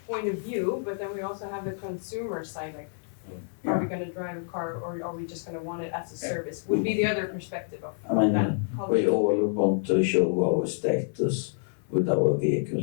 point of view, but then we also have the consumer side, like, are we going to drive a car, or are we just going to want it as a service? Would be the other perspective of that culture. We all want to show our status with our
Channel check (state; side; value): silent; right; 59 dB below the other